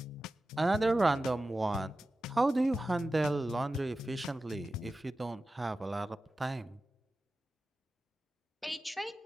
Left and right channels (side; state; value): both; normal; correlation 0.94